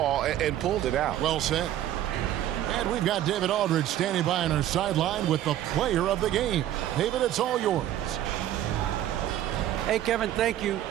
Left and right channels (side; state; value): left; quieter; 12.4 dB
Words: and pulled it out. Well said. And we've got David Aldridge standing by on our sideline with the player of the game. David, it's all yours. Hey, Kevin, thank you.